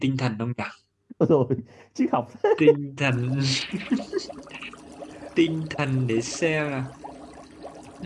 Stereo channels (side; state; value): both; identical; correlation 1.00